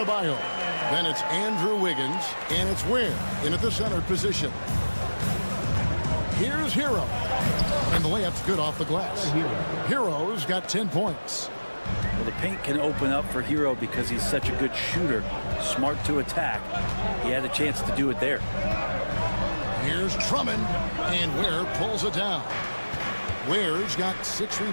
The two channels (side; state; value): both; inverted; correlation -1.00